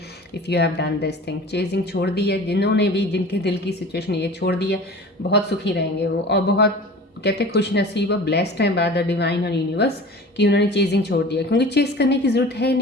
if you have done this thing. Chasing छोड़ दी है, जिन्होंने भी, जिनके दिल की सिचुएशन ये छोड़ दी है, बहुत सुखी रहेंगे वो, और बहुत कहते खुश नसीब और ब्लेस्ड हैं बाय द डिवाइन और यूनिवर्स कि उन्होंने चेजिंग छोड़ दिया, क्योंकि चेज करने की ज़रूरत है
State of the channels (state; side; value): normal; both; correlation 0.39